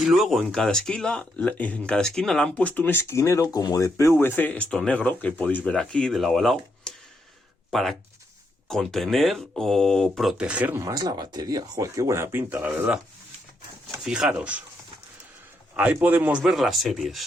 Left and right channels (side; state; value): both; normal; correlation 0.79